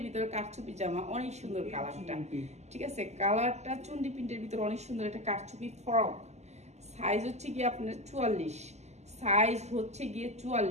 ভিতরে কাঠচুপি জামা, অনেক সুন্দর কালারটা, ঠিক আছে। কালারটা চুন্ডি প্রিন্টের ভিতরে অনেক সুন্দর, একটা কাঠচুপি ফ্রক। সাইজ হচ্ছে গিয়ে আপনার 44, সাইজ হচ্ছে গিয়ে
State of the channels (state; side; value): late; left; 0.33 ms